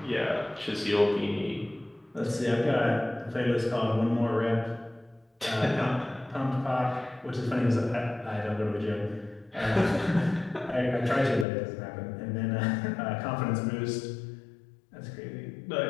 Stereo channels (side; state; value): right; drops out; at 11.5 s